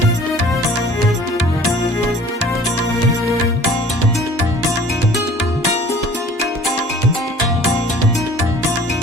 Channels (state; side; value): normal; both; correlation 0.50